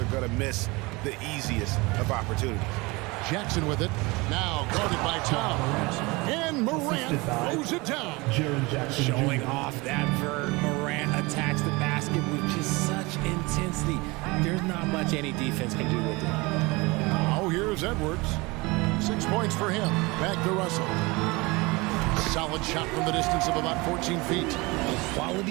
are going to miss the easiest of opportunities. Jackson with it. Now guarded by Towns. And Morant throws it down. Showing off that vert. Morant attacks the basket with just such intensity. There's not much any defense can do with it. Now here's Edwards. 6 points for him. Back to Russell. Solid shot from the distance of about 14 feet. A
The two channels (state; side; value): quieter; left; 24.5 dB